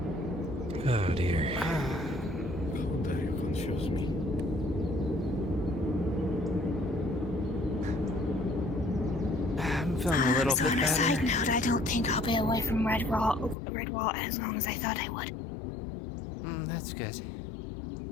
Oh dear. Confuse me. I'm feeling a little bit On a better. side note, I don't think I'll be away from Redwall as long as I thought I would. That's good.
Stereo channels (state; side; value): drops out; right; at 13.6 s